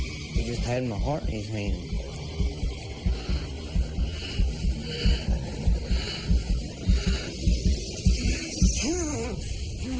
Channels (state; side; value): identical; both; correlation 1.00